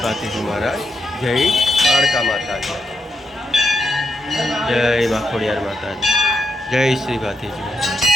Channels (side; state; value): both; normal; correlation 0.83